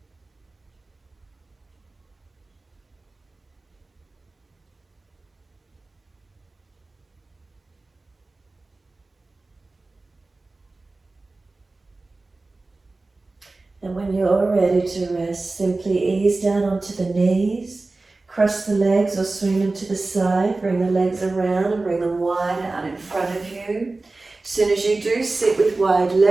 And when you're ready to rest, simply ease down onto the knees, cross the legs or swing them to the side, bring the legs around and bring them wide out in front of you. As soon as you do sit with wide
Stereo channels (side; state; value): left; quieter; 3.3 dB